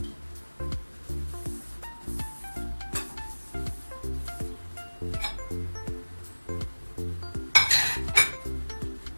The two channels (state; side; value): inverted; both; correlation -1.00